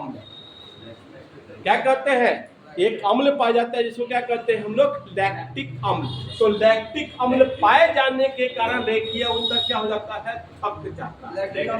क्या कहते हैं, एक अम्ल पाया जाता है जिसको क्या कहते हैं हम लोग, लैक्टिक अम्ल। तो लैक्टिक अम्ल पाए जाने के कारण रेखीय ऊतक क्या हो जाता है, थक जाता है।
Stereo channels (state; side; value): identical; both; correlation 1.00